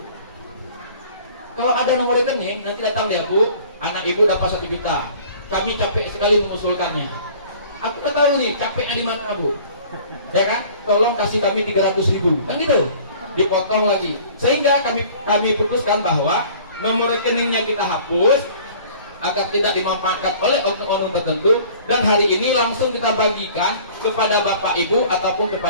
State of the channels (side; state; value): both; inverted; correlation -0.49